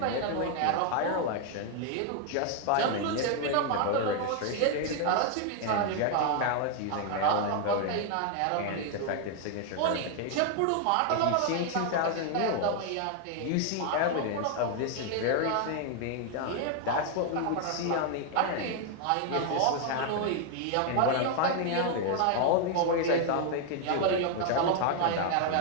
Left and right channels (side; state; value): both; different; correlation 0.00